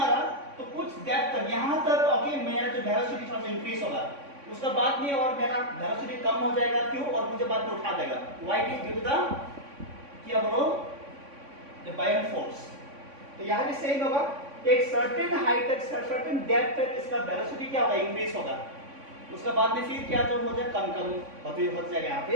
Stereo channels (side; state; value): left; late; 3.6 ms